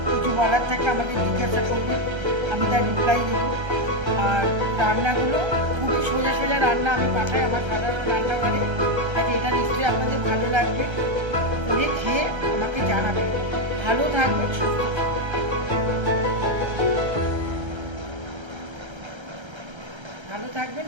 কিছু বলার থাকে আমাকে জিজ্ঞাসা করবেন, আমি তার রিপ্লাই দেবো। আর রান্নাগুলো খুবই সোজা সোজা রান্না আমি পাঠাই আমার সাধারণ রান্নাঘরে। তাই এটা নিশ্চয়ই আপনাদের ভালো লাগবে, করে খেয়ে আমাকে জানাবেন। ভালো থাকবেন, সুস্থ থাকবেন,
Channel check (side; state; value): left; late; 1.3 ms